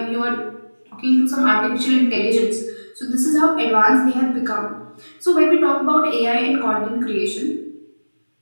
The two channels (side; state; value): both; inverted; correlation -1.00